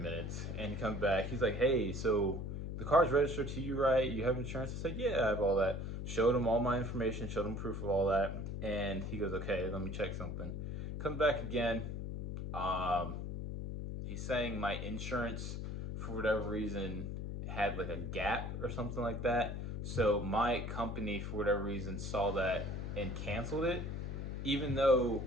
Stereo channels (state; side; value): noise; left; hum, 4 dB below the sound